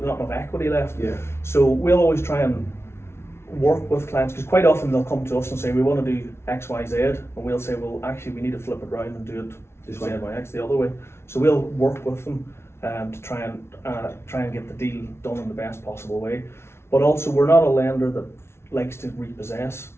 enough equity left. Yeah. So we'll always try and work with clients, because quite often they'll come to us and say we want to do X, Y, Z, and we'll say, well, actually we need to flip it around and do it Z by X the other way. So we'll work with them to try and get the deal done in the best possible way. But also, we're not a lender that likes to repossess.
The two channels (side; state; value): right; late; 0.12 ms